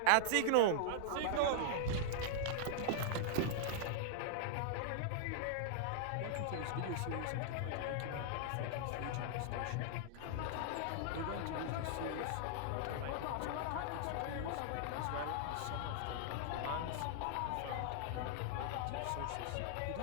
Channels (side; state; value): both; different; correlation -0.01